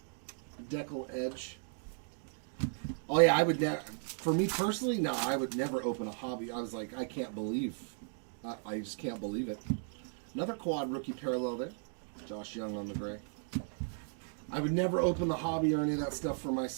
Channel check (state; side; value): silent; left; 54 dB below the other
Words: decal edge. Oh yeah, I would never. For me personally, no, I would never open a hobby. I was like, I can't believe. I just can't believe it. Another quad rookie parallel there. Josh Young on the gray. I would never open the hobby or any of that stuff for